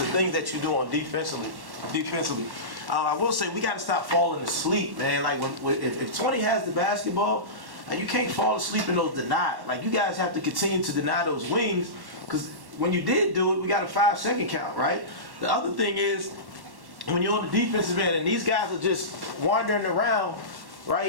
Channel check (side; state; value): left; late; 1.1 ms